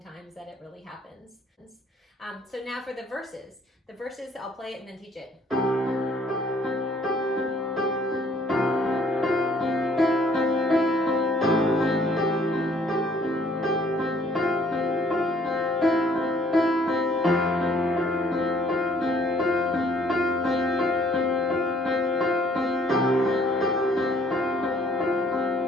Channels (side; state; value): both; normal; correlation 0.61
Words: that it really happens. So now for the verses. The verses, I'll play it and then teach it.